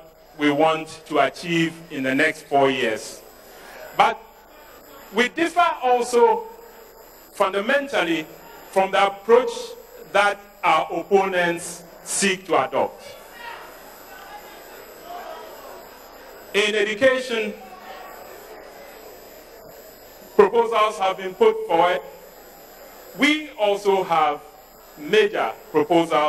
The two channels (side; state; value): both; identical; correlation 1.00